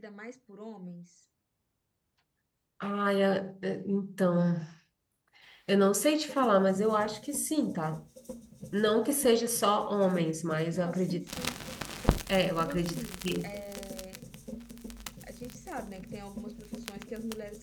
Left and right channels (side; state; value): both; identical; correlation 1.00